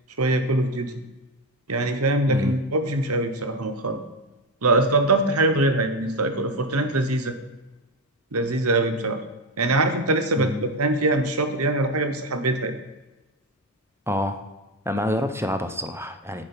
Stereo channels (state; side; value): normal; both; correlation 0.14